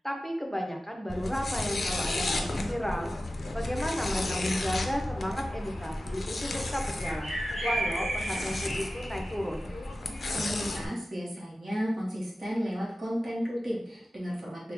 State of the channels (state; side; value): normal; both; correlation 0.94